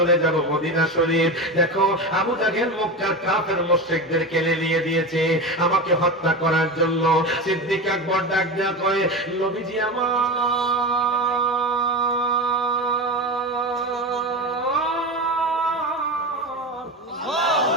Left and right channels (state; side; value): normal; both; correlation 0.23